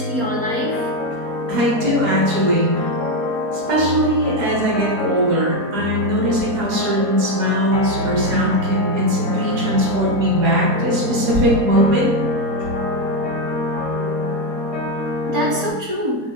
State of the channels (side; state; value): left; late; 4.2 ms